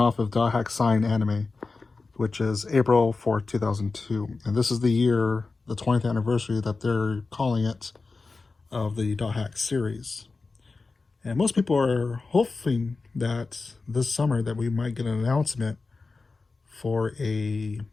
of Dothack Sign Anime, which is April 4th, 2002. And this is the year, the 20th anniversary that they're calling it, of the Dothack series. And most people are hoping that this summer that we might get an announcement for a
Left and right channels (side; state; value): right; quieter; 3.9 dB